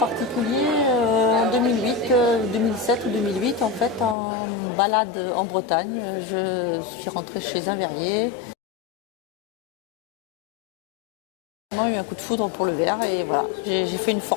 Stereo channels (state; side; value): drops out; right; at 4.2 s